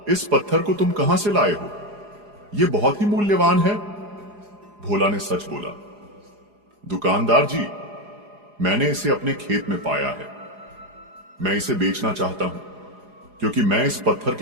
इस पत्थर को तुम कहां से लाए हो? यह बहुत ही मूल्यवान है। भोला ने सच बोला, दुकानदार जी, मैंने इसे अपने खेत में पाया है। मैं इसे बेचना चाहता हूं, क्योंकि मैं इस पत्थर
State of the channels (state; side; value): late; left; 4.8 ms